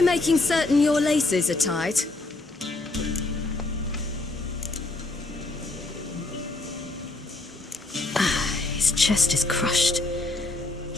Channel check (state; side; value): quieter; right; 3.1 dB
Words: making certain your laces are tied? His chest is crushed.